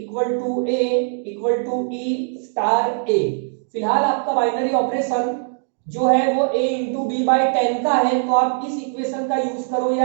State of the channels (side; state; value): left; silent; digital silence